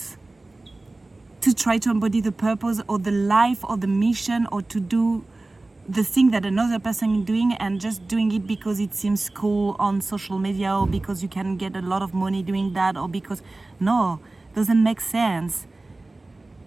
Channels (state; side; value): quieter; left; 3.0 dB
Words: to try to embody the purpose or the life or the mission, or to do the thing that another person is doing and just doing it because it seems cool on social media, or because you can get a lot of money doing that, or because, no, doesn't make sense.